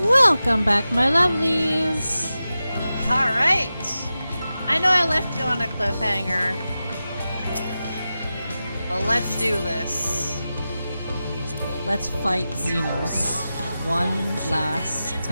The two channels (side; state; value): both; inverted; correlation -0.93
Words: Welcome back, my lovelies! Alright! I know I left you on a cliffhanger, but let's do this. Let's fight Xenos one last